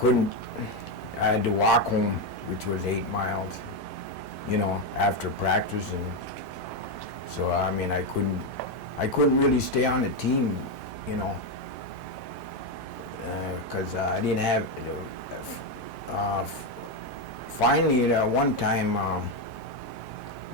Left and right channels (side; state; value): both; normal; correlation 0.07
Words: had to walk home, which was 8 miles, after practice, and so, I couldn't really stay on the team, because I didn't have, finally, one time,